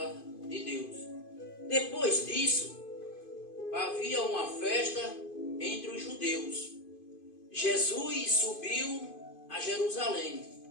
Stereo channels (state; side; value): late; right; 2.5 ms